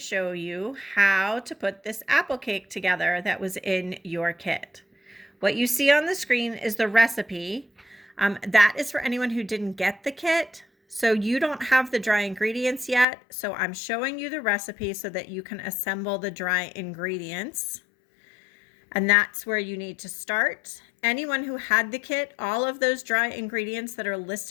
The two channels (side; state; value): right; drops out; at 13.1 s